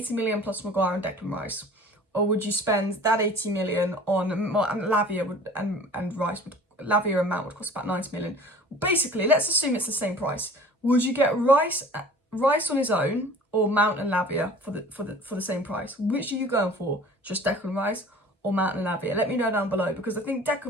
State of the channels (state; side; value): normal; both; correlation 0.46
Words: million plus Maguire and Declan Rice? Or would you spend that 80 million on Lavia and Rice? Lavia and Mount would cost about 90 million. Basically, let's assume it's the same price. Would you get Rice on his own or Mount and Lavia for the same price? Which are you going for? Just Declan Rice or Mount and Lavia? Let me know down below, because I think